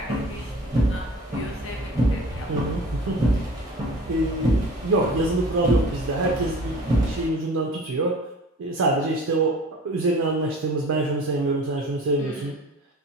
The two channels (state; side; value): normal; both; correlation 0.43